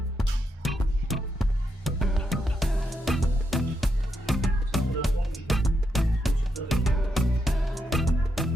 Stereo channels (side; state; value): both; normal; correlation 0.82